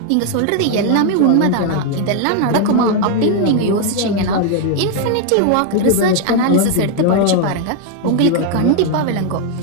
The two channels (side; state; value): both; different; correlation 0.00